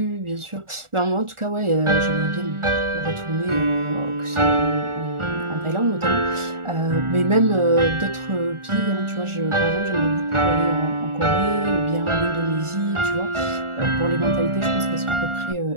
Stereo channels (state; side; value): late; left; 1.4 ms